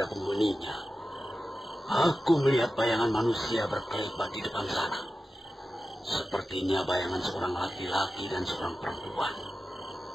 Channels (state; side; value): normal; both; correlation 0.93